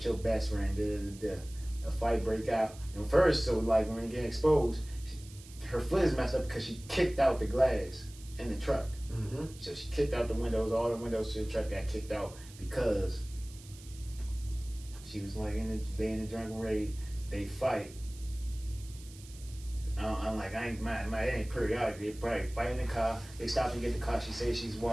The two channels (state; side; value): noise; right; hiss, 20 dB below the sound